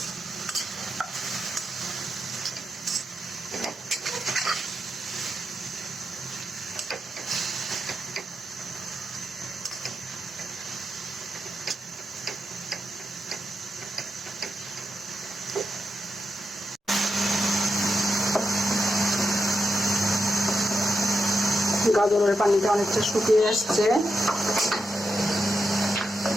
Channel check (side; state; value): both; normal; correlation 0.86